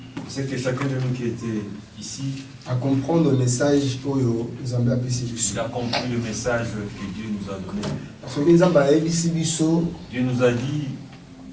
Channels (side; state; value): both; identical; correlation 1.00